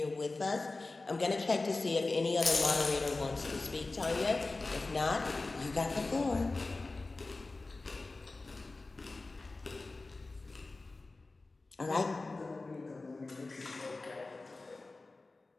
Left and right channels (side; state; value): right; quieter; 3.4 dB